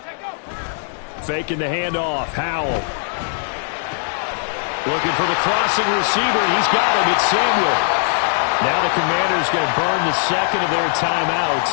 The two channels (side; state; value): right; silent; digital silence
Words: Faking the handoff. Howell. Looking for the crossing receiver. He's got him. It's Samuel. Now the Commanders going to burn the 2nd of their